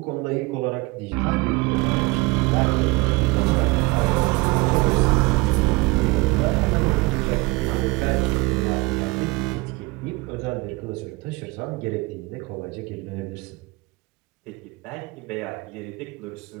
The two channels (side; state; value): left; quieter; 24.0 dB